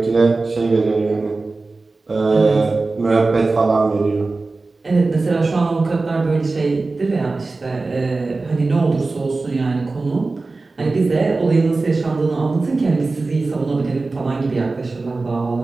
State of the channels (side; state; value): left; quieter; 3.6 dB